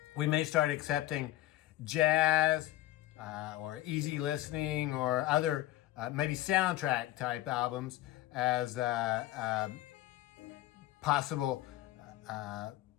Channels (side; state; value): right; quieter; 15.2 dB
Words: We may start accepting jazz or easy listening or other maybe soundtrack type albums as possible